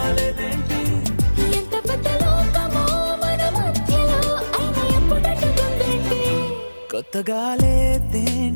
లేదేంటి ఎంత పెద్ద లోకమో మన మధ్యలో అయినా ఎప్పుడట్టుకుందేంటి కొత్తగా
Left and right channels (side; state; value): both; inverted; correlation -1.00